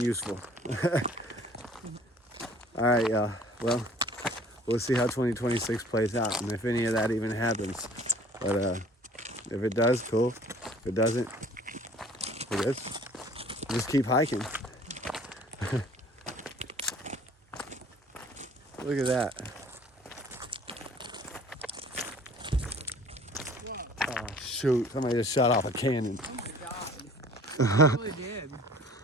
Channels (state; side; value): normal; both; correlation 0.51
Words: All right, y'all. Well, we'll see how 2026 plays out and if any of that even happens. But if it does, cool. If it doesn't, it is. Just keep hiking. Look at that. Oh, shoot. Somebody just shot off a cannon. Oh my god. It really did.